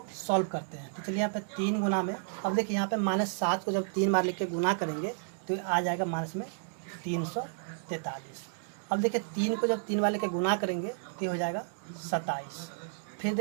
सॉल्व करते हैं। तो चलिए यहाँ पे 3 गुना में, अब देखिए यहाँ पे -7 को जब 3 बार लिख के गुना करेंगे तो आ जाएगा माइनस में 343। अब देखिए 3 को जब 3 बार लेके गुना करेंगे तो हो जाएगा 27। फिर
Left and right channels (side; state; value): left; silent; digital silence